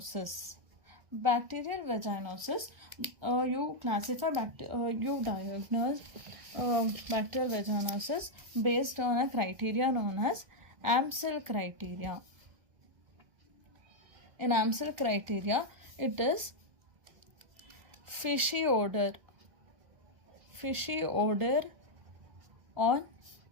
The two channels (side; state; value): left; late; 1.4 ms